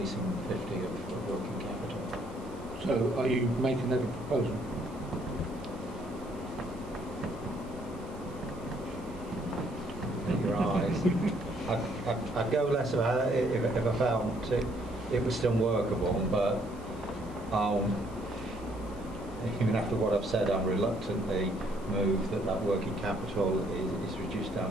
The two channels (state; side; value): noise; right; hiss, 25 dB below the sound